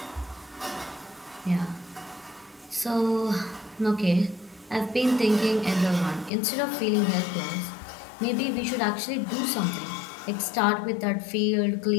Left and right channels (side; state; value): right; drops out; at 6.3 s